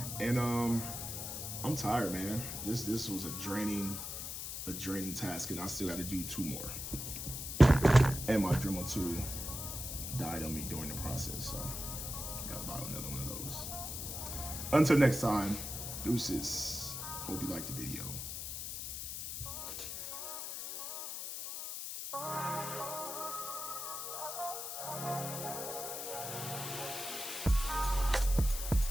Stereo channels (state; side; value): noise; left; hiss, 5 dB below the sound